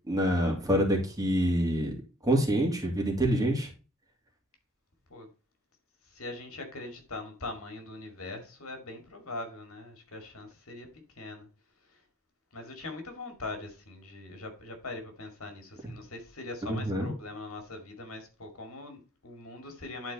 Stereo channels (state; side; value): normal; both; correlation 0.61